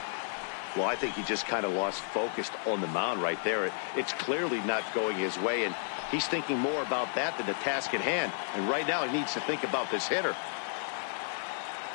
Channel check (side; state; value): right; silent; digital silence